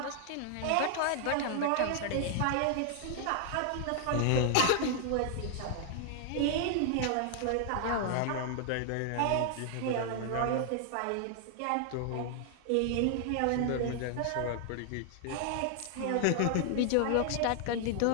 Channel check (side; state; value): both; different; correlation 0.00